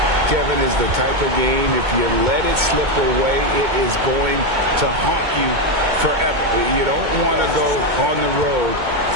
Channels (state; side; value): late; left; 2.2 ms